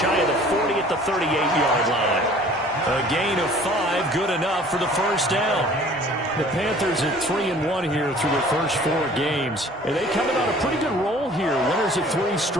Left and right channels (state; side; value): normal; both; correlation 0.50